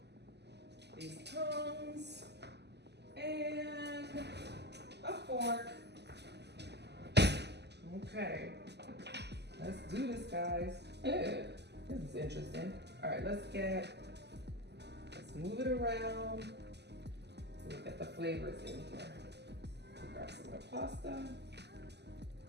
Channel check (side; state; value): left; late; 0.50 ms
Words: these tongs and a fork. Okay, let's do this, guys. This is interesting. All right, let's move it around. We'll get the flavors in here. Grab some of the pasta,